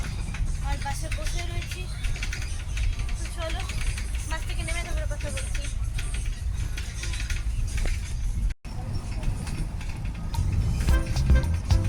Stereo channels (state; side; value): identical; both; correlation 1.00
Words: আর বাসে বসে রয়েছি। তো চলো বাস থেকে নেমে তারপরে কথা বলছি।